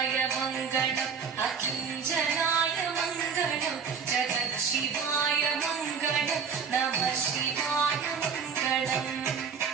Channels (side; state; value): left; quieter; 6.2 dB